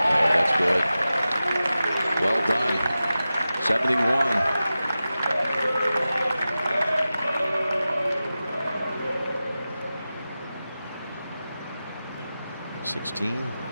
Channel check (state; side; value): inverted; both; correlation -0.94